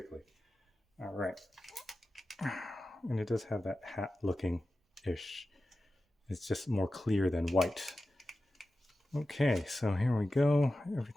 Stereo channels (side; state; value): both; normal; correlation 0.93